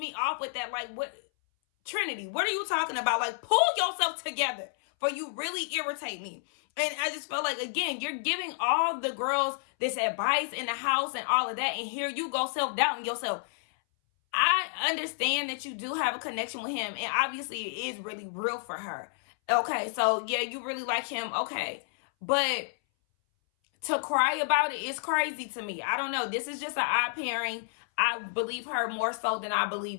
off with that. Like, what, Trinity, what are you talking about? Like, pull yourself together, for you really irritate me. And I just felt like, again, you're giving all the girls this advice in the house and all of that, and here you go self-doubting yourself. I understand that you do have a connection with him, and obviously it is really real for her. Okay, so yeah, you really like him, okay. But to cry about it is crazy to me. I don't know. This is just an odd pairing. I believe her more so than I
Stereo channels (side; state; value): right; silent; 58 dB below the other